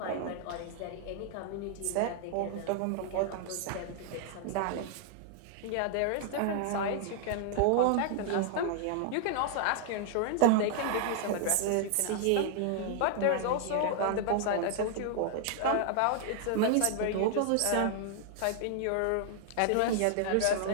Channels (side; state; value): both; different; correlation 0.00